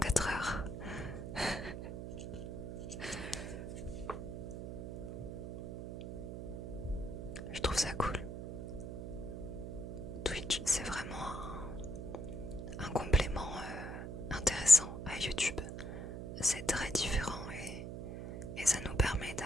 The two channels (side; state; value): right; noise; hum, 7 dB below the sound